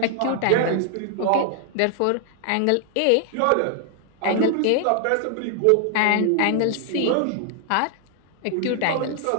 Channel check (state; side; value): different; both; correlation 0.00